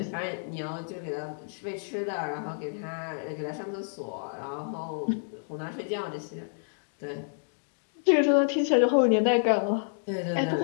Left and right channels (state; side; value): silent; right; digital silence